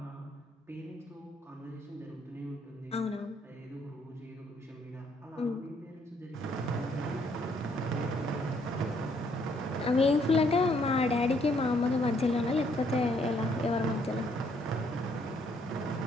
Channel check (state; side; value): normal; both; correlation 0.68